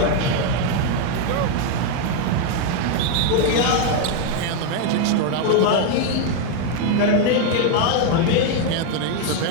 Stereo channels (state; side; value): different; both; correlation 0.01